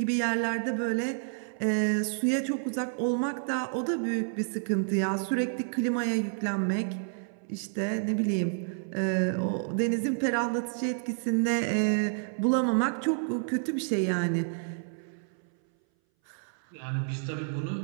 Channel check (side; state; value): left; silent; 58 dB below the other